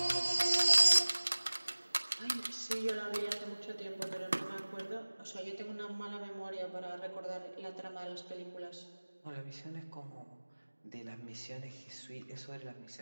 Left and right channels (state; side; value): inverted; both; correlation -1.00